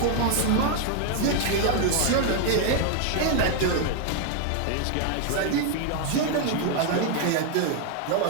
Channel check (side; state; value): both; different; correlation 0.00